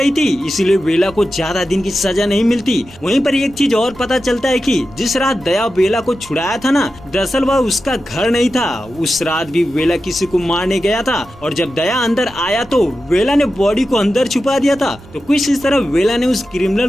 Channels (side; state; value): both; normal; correlation 0.92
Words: थी, इसीलिए वेला को ज्यादा दिन की सजा नहीं मिलती। वहीं पर एक चीज और पता चलता है कि जिस रात दया वेला को छुड़ाया था ना, दरअसल वह उसका घर नहीं था। उस रात भी वेला किसी को मारने गया था और जब दया अंदर आया तो वेला ने बॉडी को अंदर छुपा दिया था। तो कुछ इस तरह वेला ने उस क्रिमिनल